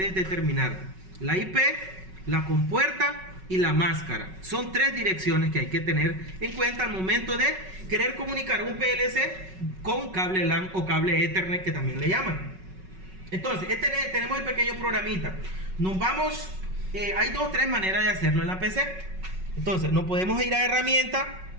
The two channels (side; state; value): left; late; 5.3 ms